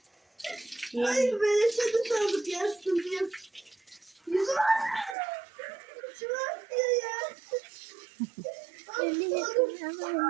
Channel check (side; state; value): left; drops out; at 5.2 s